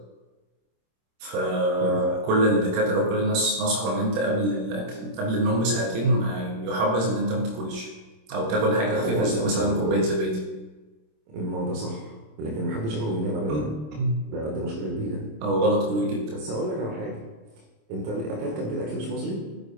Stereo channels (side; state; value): left; late; 26 ms